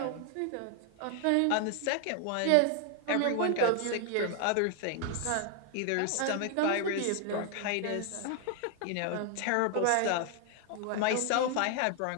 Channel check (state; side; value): different; both; correlation 0.00